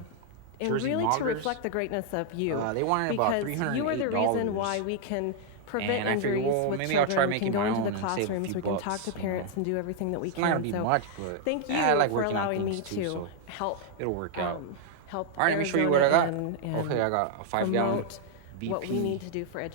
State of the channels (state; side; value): different; both; correlation -0.01